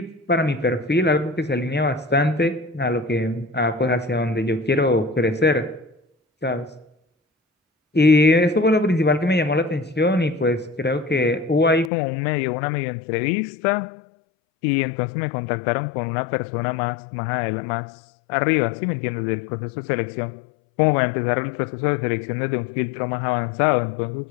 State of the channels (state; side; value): drops out; right; at 11.9 s